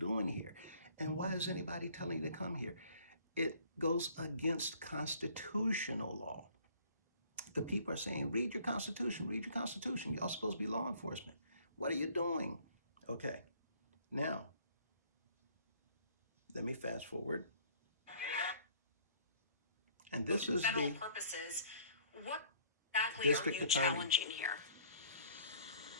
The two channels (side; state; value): both; inverted; correlation -0.57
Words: here? And why is anybody telling you to come here? It goes against constitutional law. The people are saying, read your Constitution, read your Constitution. Y'all supposed to be law enforcement. What are you doing? Okay, now let me fast forward. And this is federal the purposes. What exactly are district you attorney. challenging here?